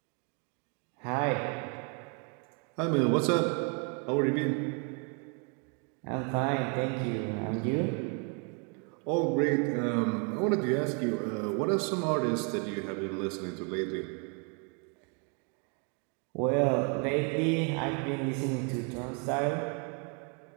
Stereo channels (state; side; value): quieter; left; 37.0 dB